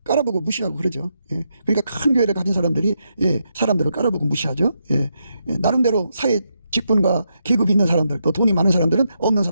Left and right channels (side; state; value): both; inverted; correlation -0.82